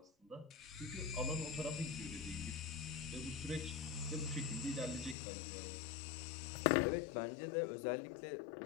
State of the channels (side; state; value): right; drops out; at 5.2 s